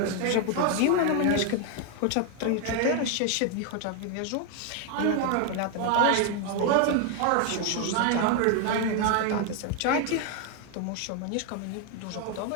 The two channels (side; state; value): both; different; correlation 0.00